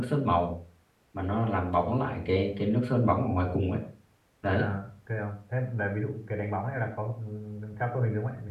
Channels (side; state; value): both; identical; correlation 1.00